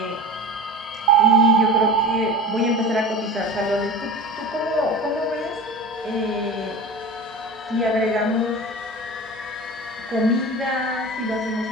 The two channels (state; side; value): normal; both; correlation 0.33